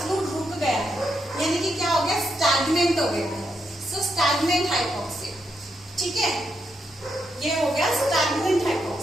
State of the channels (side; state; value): both; normal; correlation 0.81